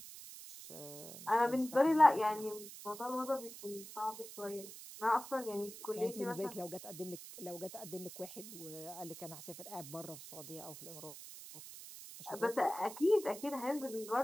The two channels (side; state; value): right; noise; hiss, 13 dB below the sound